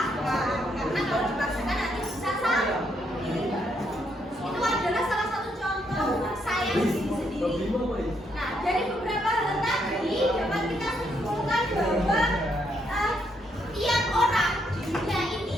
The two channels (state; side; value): normal; both; correlation 0.75